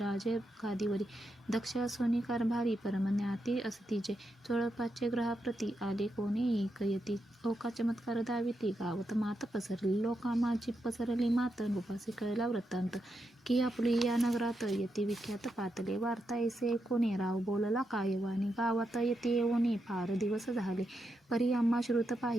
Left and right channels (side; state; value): both; normal; correlation 0.85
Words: गादीवरी. दक्ष असोनी कारभारी परमज्ञाती असतीचे. चोळप्पाचे ग्रहाप्रती आले कोणी ऐकयती. लोका चमत्कार दाविती गावात मात पसरली. लोकामाची पसरली मात. उपासी कळला वृत्तांत की आपुली या नगरात यती विख्यात पातले. वार्ता ऐसे ऐकोने राव बोलला कायवानी. गावात यती येऊनी फार दिवस झाले. परी आम्हा श्रुत